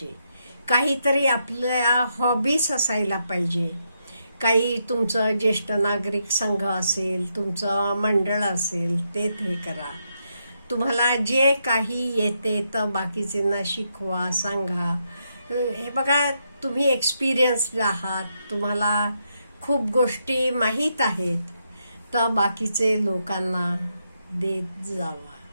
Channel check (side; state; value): both; inverted; correlation -0.80